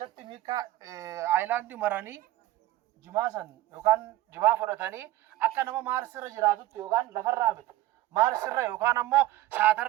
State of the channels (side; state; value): left; quieter; 15.6 dB